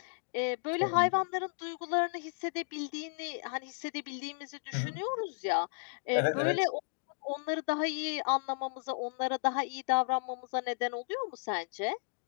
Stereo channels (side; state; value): right; silent; digital silence